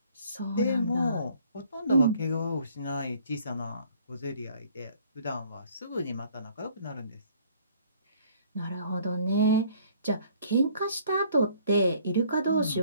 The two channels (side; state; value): both; inverted; correlation -0.58